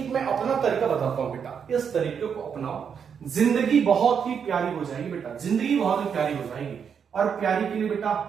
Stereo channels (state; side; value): quieter; left; 7.1 dB